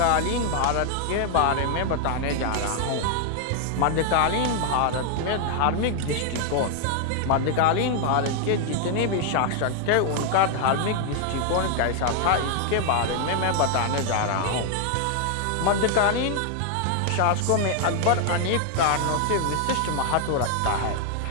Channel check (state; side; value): different; both; correlation 0.00